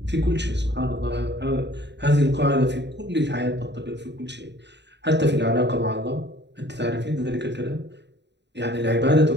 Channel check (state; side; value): late; left; 0.51 ms